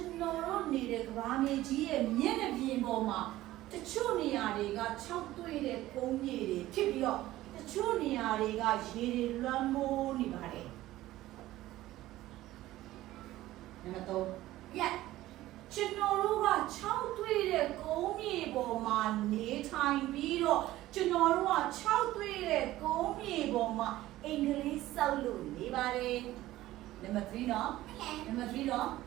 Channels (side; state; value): left; quieter; 15.8 dB